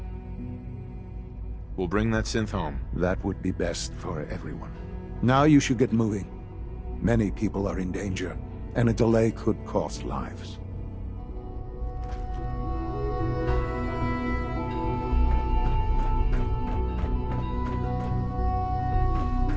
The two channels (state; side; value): identical; both; correlation 1.00